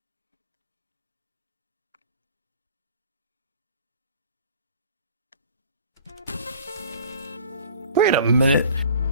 Wait a minute.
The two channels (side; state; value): both; inverted; correlation -0.46